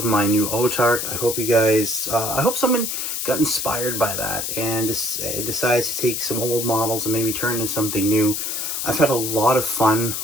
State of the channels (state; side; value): noise; left; hiss, 3 dB below the sound